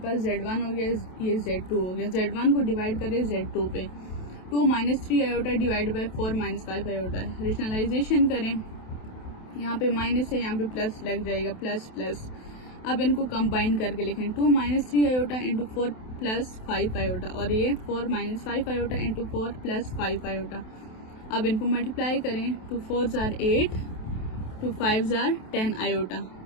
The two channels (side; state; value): right; late; 27 ms